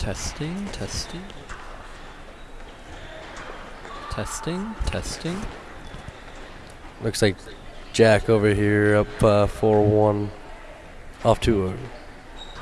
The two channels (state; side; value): identical; both; correlation 1.00